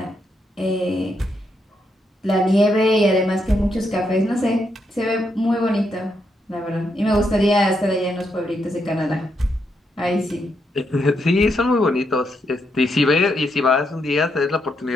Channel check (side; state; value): both; normal; correlation 0.79